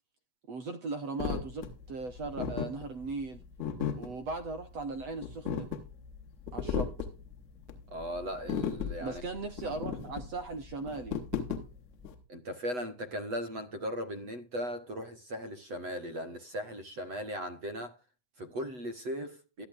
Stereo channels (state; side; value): late; left; 8.1 ms